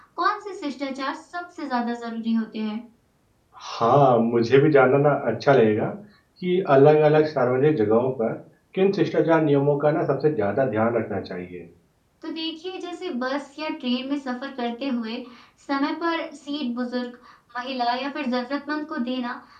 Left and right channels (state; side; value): identical; both; correlation 1.00